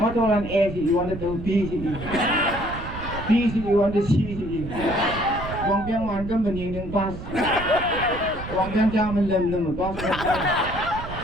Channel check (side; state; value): right; noise; rumble, 10 dB below the sound